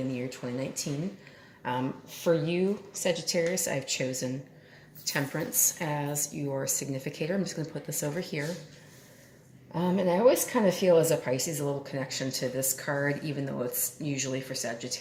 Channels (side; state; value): both; identical; correlation 1.00